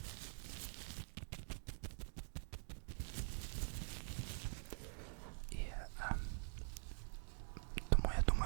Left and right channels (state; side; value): silent; left; digital silence